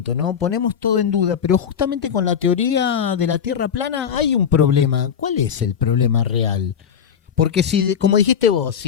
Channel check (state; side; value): quieter; right; 7.7 dB